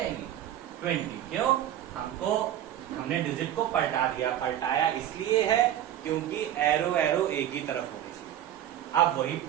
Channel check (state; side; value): quieter; left; 11.6 dB